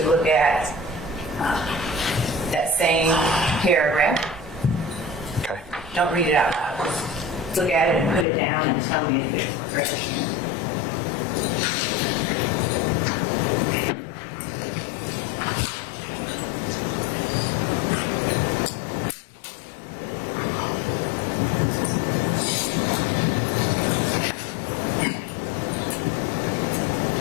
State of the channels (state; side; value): drops out; right; at 8.2 s